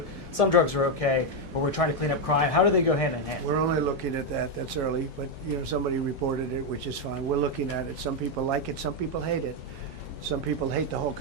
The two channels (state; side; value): normal; both; correlation 0.03